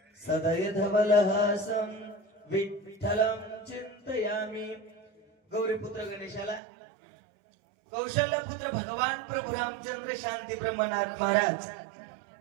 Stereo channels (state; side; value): drops out; left; at 6.6 s